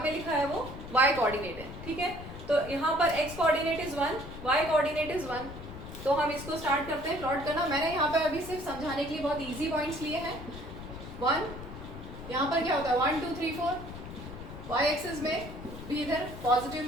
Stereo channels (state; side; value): noise; left; rumble, 12 dB below the sound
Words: में लिखा है वो वाई कोऑर्डिनेट है। ठीक है। तो यहाँ पर x coordinate is 1, y coordinate is 1। तो हम इसको स्टार्ट करते हैं प्लॉट करना। मैंने यहाँ पर अभी सिर्फ समझाने के लिए बहुत इजी पॉइंट्स लिए हैं। 1, यहाँ पर क्या होता है 1 2 3 4, y एक्सिस में भी इधर पॉजिटिव